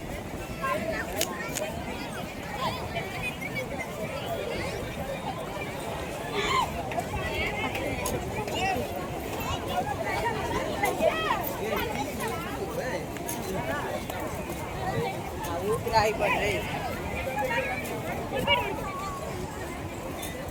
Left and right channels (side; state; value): both; identical; correlation 1.00